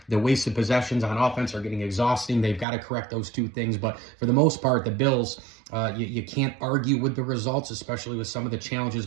The wasted possessions on offense are getting exhausting. They've got to correct those 2 things. But for the most part, the Bills, you can't argue with the results, especially with some of the challenges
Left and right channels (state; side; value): drops out; left; at 2.7 s